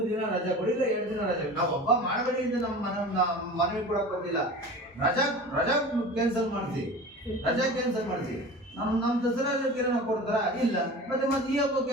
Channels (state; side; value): normal; both; correlation 0.36